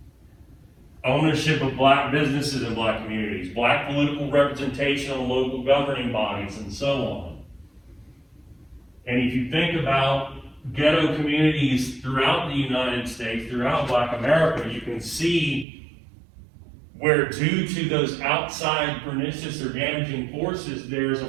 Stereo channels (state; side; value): drops out; left; at 15.7 s